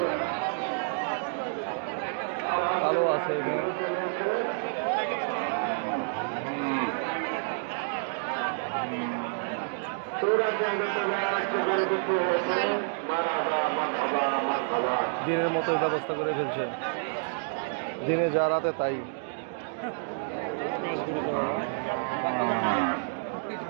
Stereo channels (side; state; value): left; silent; digital silence